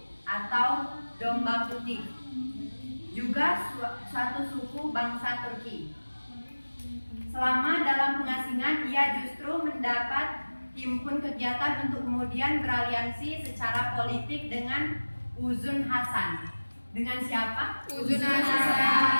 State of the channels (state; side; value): inverted; both; correlation -1.00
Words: atau Domba Putih, juga suatu suku bangsa Turki. Selama dalam pengasingan ia justru mendapat himpun kegiatan untuk kemudian beraliansi secara politik dengan Uzun Hasan. Dengan siapa? Uzun